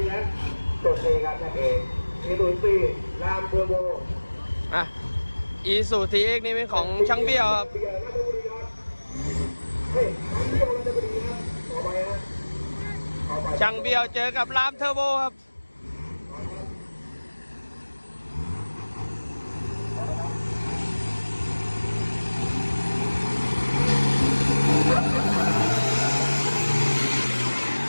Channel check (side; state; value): both; inverted; correlation -1.00